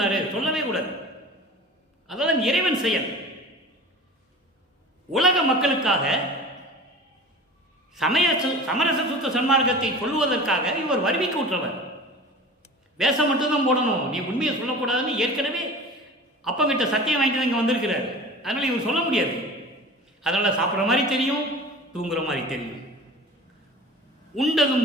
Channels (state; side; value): normal; both; correlation 0.38